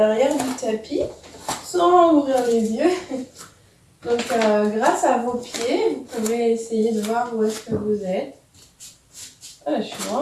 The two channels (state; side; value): identical; both; correlation 1.00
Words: du tapis sans ouvrir les yeux. Donc grâce à vos pieds, vous pouvez essayer de voir où est-ce que vous êtes. Ah, je suis